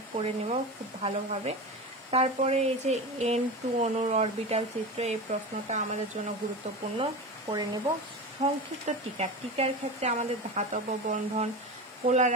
পড়ে নেব খুব ভালোভাবে। তারপরে এই যে N2 অণুর অরবিটাল চিত্র, এই প্রশ্নটা আমাদের জন্য গুরুত্বপূর্ণ, পড়ে নেব। সংক্ষিপ্ত টিকার ক্ষেত্রে আমাদের ধাতব বন্ধন, পোলার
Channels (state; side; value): normal; both; correlation 0.26